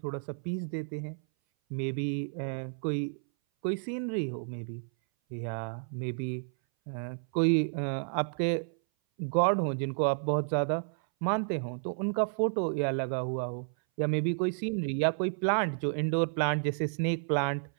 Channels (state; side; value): silent; left; 57 dB below the other